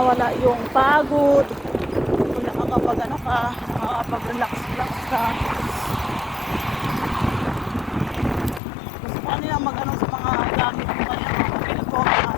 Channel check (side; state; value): right; drops out; at 8.6 s